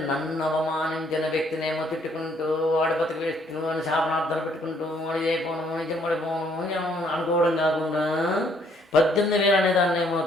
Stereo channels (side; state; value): both; normal; correlation 0.66